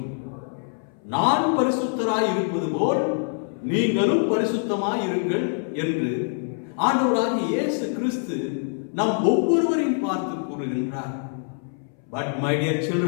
நான் பரிசுத்தராய் இருப்பது போல் நீங்களும் பரிசுத்தமாய் இருங்கள் என்று ஆண்டவராகிய இயேசு கிறிஸ்து நம் ஒவ்வொருவரையும் பார்த்து கூறுகின்றார். But my dear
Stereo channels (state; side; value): silent; right; 61 dB below the other